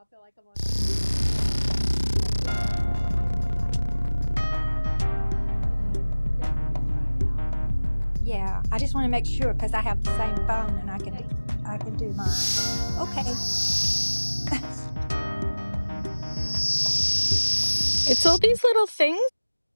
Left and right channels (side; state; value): both; inverted; correlation -1.00